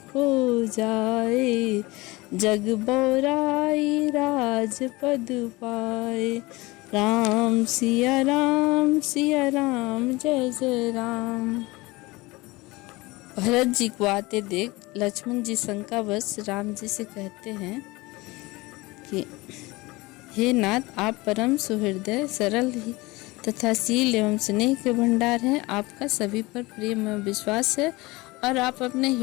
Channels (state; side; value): quieter; right; 22.1 dB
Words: को जाए, जग बौराई राजपद पाए। राम सिया राम जय जय राम। भरत जी को आते देख लक्ष्मण जी शंकावश राम जी से कहते हैं कि हे नाथ, आप परम सुहृदय सरल ही तथा शील एवं स्नेह के भंडार हैं। आपका सभी पर प्रेम एवं विश्वास है और आप अपने